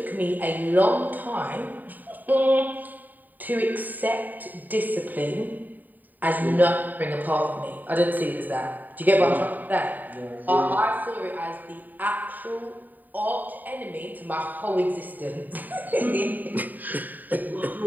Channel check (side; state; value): left; late; 0.086 ms